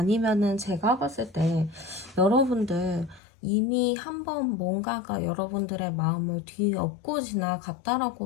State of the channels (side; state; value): right; drops out; at 3.2 s